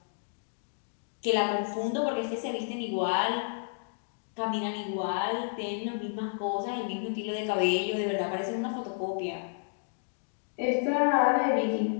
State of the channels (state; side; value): silent; right; digital silence